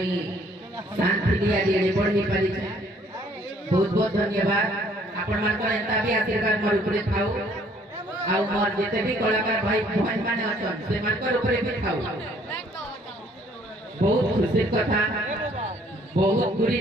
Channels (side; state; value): both; normal; correlation 0.61